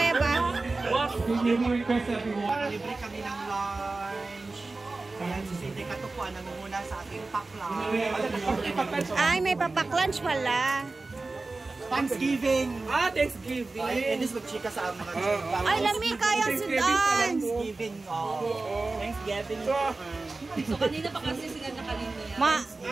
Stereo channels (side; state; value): left; quieter; 3.5 dB